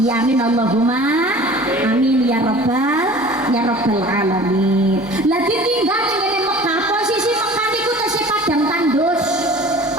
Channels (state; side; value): normal; both; correlation 0.44